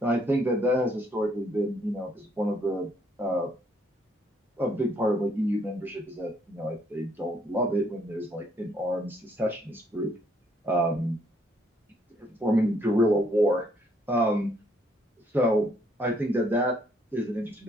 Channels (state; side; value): normal; both; correlation 0.68